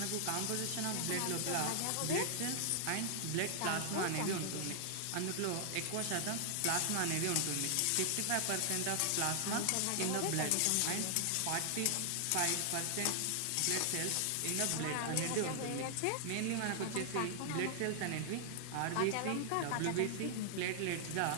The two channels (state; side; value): different; both; correlation 0.00